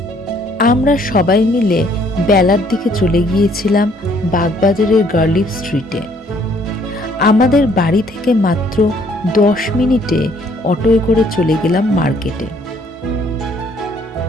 আমরা সবাই মিলে বেলার দিকে চলে গিয়েছিলাম বাগবাজারের গার্লিফ স্ট্রিটে। আমাদের বাড়ি থেকে মাত্র 10 মিনিটে অটোয় করে চলে গেলাম মার্কেটে।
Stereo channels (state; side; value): normal; both; correlation 0.63